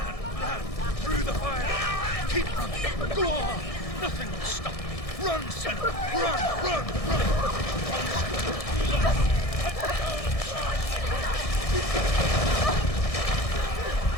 Through the fire! Keep running! Go on! Nothing will stop me! Run, Senua! Run! Run, Senua! Run!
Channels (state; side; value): late; right; 1.6 ms